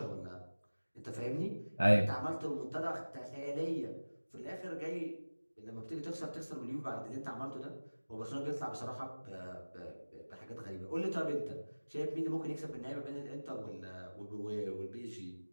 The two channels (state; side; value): inverted; both; correlation -1.00